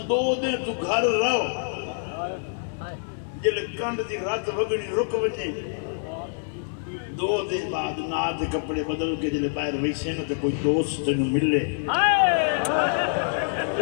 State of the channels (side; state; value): right; silent; digital silence